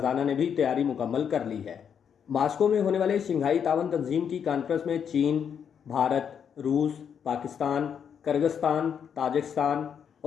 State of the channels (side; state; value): right; quieter; 7.7 dB